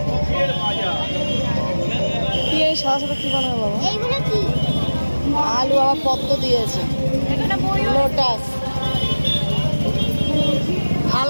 কি এই সাদা সাদা কি বানাবো বাবা? আলু আবার পদ্ম দিয়েছে, লোটাস,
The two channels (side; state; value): both; inverted; correlation -1.00